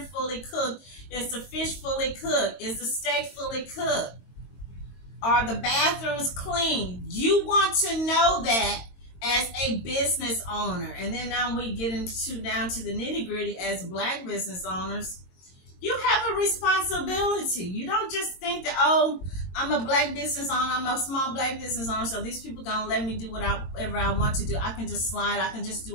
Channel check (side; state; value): right; late; 22 ms